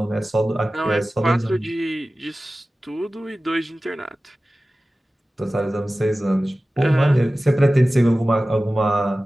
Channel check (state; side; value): normal; both; correlation 0.96